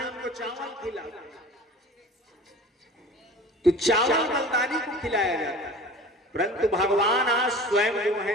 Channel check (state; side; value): normal; both; correlation 0.40